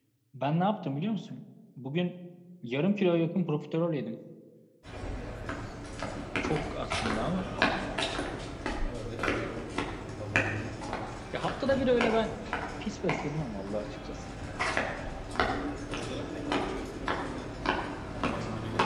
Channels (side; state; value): both; identical; correlation 1.00